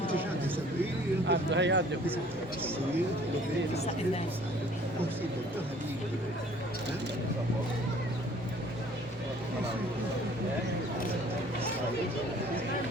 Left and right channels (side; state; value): both; normal; correlation 0.54